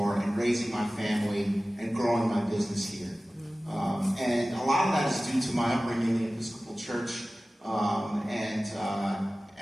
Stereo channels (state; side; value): normal; both; correlation 0.97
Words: and raising my family and growing my business here. And a lot of that is due to my upbringing in the Episcopal Church, and